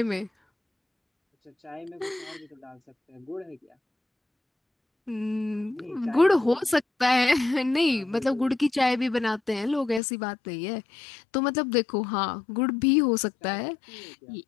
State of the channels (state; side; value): drops out; right; at 10.0 s